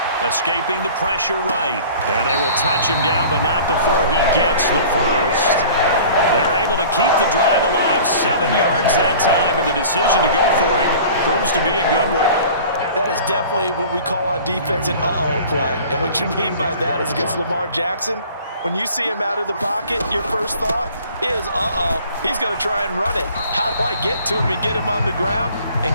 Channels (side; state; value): both; inverted; correlation -0.46